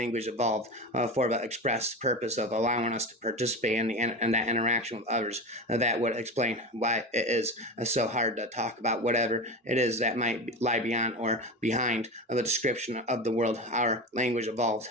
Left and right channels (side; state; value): both; normal; correlation 0.25